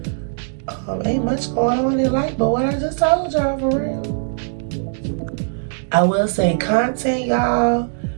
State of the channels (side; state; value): left; silent; digital silence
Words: Ain't much going on in life but what I just told y'all, for real. I will say content, y'all.